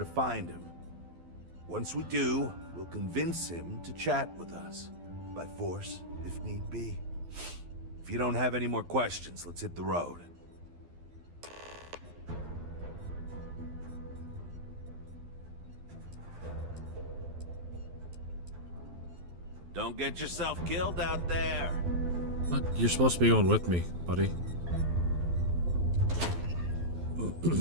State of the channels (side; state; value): left; late; 12 ms